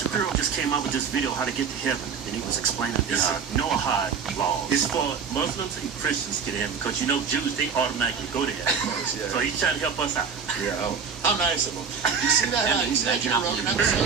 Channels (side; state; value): left; quieter; 6.1 dB